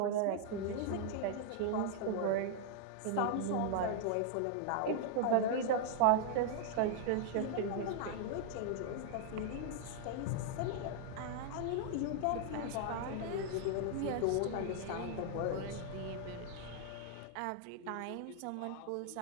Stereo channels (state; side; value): different; both; correlation 0.00